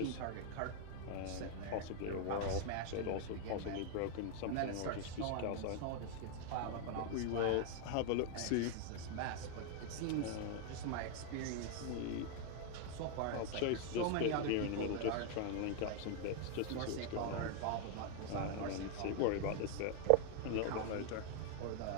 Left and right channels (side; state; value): both; different; correlation 0.00